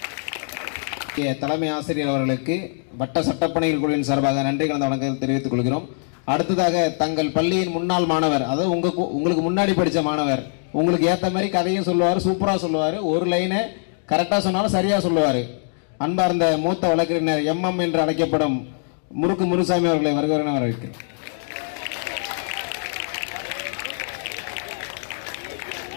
தலைமை ஆசிரியர் அவர்களுக்கு வட்ட சட்டப்பணிகள் குழுவின் சார்பாக நன்றி கலந்த வணக்கத்தை தெரிவித்துக் கொள்கிறோம். அடுத்ததாக தங்கள் பள்ளியின் முன்னாள் மாணவர், அதாவது உங்களுக்கு முன்னாடி படித்த மாணவர், உங்களுக்கு ஏற்ற மாதிரி கதையும் சொல்லுவார், சூப்பராக சொல்லுவார், ஒரு லைனை கரெக்டாக சொன்னாலும் சரியாக சொல்லுவார். அன்பார்ந்த மூத்த வழக்கறிஞர் MM என்று அழைக்கப்படும் முறுக்கு முனுசாமி அவர்களை வருகிறேன் வரவேற்கிறேன்.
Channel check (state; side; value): silent; right; digital silence